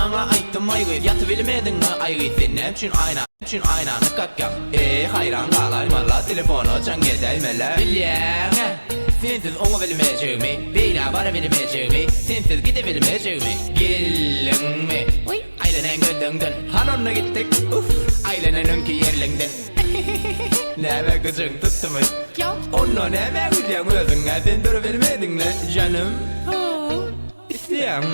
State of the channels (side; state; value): both; inverted; correlation -1.00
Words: ayttım aygı. Yatıp bilmedin mi aygı? Sen ne için aynanı kakkan. Hayran kalaymalar telefonu çan gedeymeler. Bilyene sensiz onu bilmeyeceğimi, beyla bana bilmeyeceğimi, sensiz gidebilmeyeceğimi. Gelin mi? Aylenen gördüğünden hanonla gittik. Aylenen'inki yerlinden. Neme kızın tuttu mu? Onu neme gülen özün sen durabilmedin mi canım? İsteyen